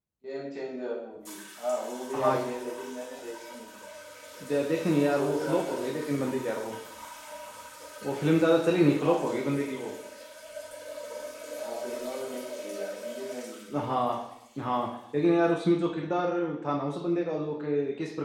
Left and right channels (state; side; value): identical; both; correlation 1.00